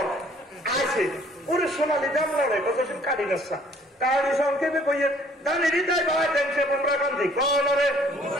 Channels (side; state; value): both; normal; correlation 0.59